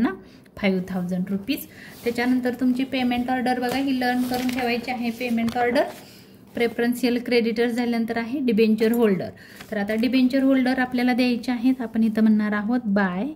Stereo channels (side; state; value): both; identical; correlation 1.00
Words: 5000 रुपीज. त्याच्यानंतर तुमची पेमेंट ऑर्डर बघा ही लर्न करून ठेवायची आहे. पेमेंट ऑर्डर प्रेफरन्शियल क्रेडिटर्स झाल्यानंतर आहे डिबेंचर होल्डर. तर आता डिबेंचर होल्डर आपल्याला द्यायचे आहेत. आपण इथं म्हणणार आहोत by